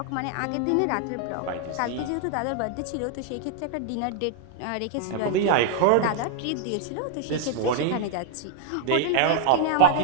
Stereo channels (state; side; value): different; both; correlation 0.00